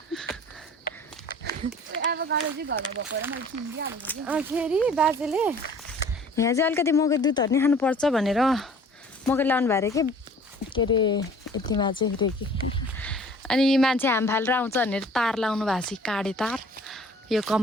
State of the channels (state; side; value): normal; both; correlation 0.50